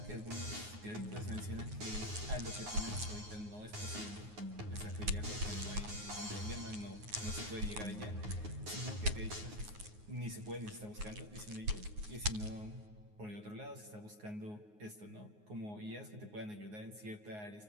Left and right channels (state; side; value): late; left; 9.5 ms